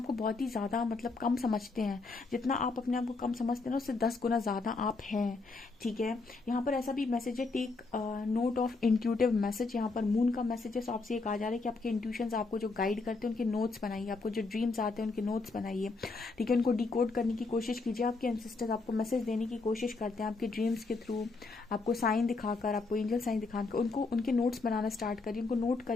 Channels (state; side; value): quieter; right; 3.9 dB